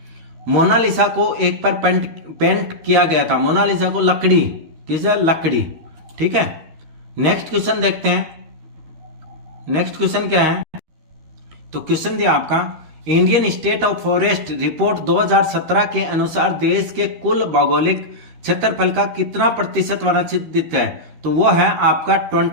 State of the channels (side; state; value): left; late; 13 ms